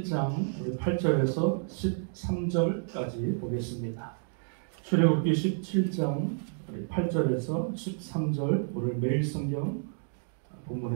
8절에서 13절까지 보겠습니다. 출애굽기 17장 8절에서 13절 오늘 매일 성경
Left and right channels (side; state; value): left; silent; 58 dB below the other